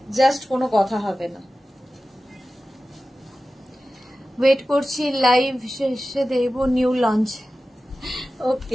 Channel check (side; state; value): both; normal; correlation 0.95